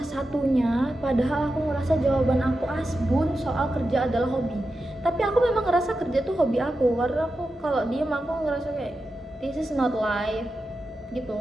satunya, padahal aku ngerasa jawaban aku asbun soal kerja adalah hobi. Tapi aku memang ngerasa kerja tuh hobi aku, karena aku kalau diem aku ngerasa kayak this is not life gitu,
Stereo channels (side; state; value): both; normal; correlation 0.90